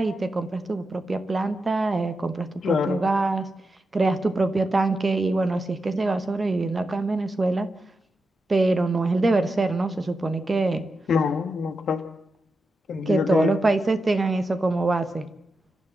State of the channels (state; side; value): normal; both; correlation 0.88